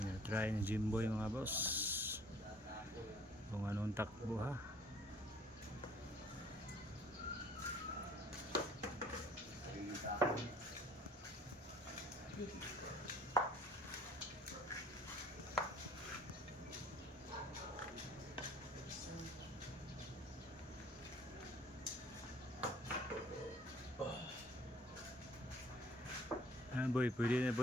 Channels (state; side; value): normal; both; correlation 0.55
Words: ni Jimboy mga boss kung anong takbo ha. Boy, pwede na